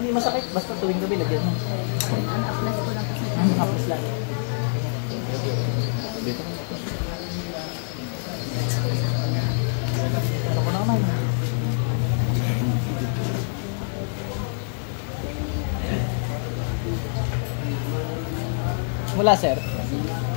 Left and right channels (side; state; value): right; silent; 62 dB below the other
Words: masakit, basta tuwing gabi, lagyan mo. apply ko lang kasi. Tapos lang. Dito. Ano ko na naman? Wala sir.